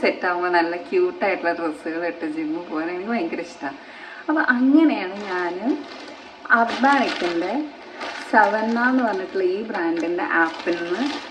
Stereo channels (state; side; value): identical; both; correlation 1.00